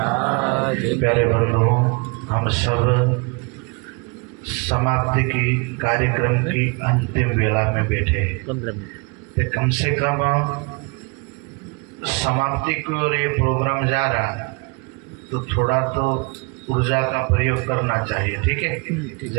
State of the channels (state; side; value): quieter; left; 31.1 dB